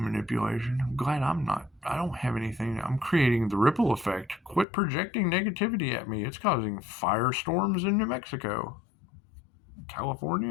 I'm glad I don't have anything. I'm creating the ripple effect. Quit projecting negativity at me. It's causing firestorms in New Mexico.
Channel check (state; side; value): drops out; right; at 4.7 s